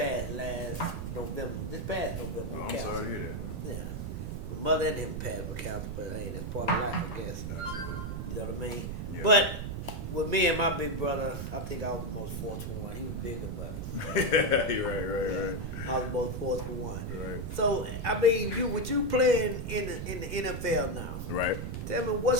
last November. This past November. Oh, with I'm cancer. sorry to hear that, man. Yeah. My mother and him passed with cancer, but hey, that's part of life, I guess. Absolutely. You know what I mean? Yeah. But with me and my big brother, I think I was the most fortunate one. He was bigger, but Right. I was the most fortunate one. Right. So, I mean, with you playing in the NFL now, Right. tell me,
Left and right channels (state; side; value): noise; right; rumble, 5 dB below the sound